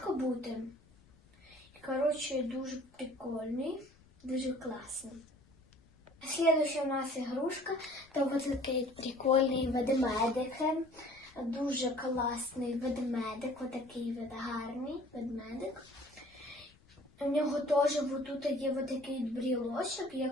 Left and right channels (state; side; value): noise; left; rumble, 27 dB below the sound